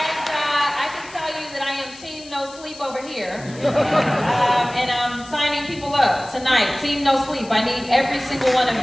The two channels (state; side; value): noise; left; hiss, 19 dB below the sound